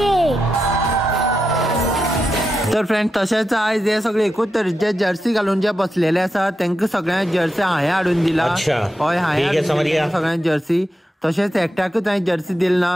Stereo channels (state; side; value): normal; both; correlation 0.88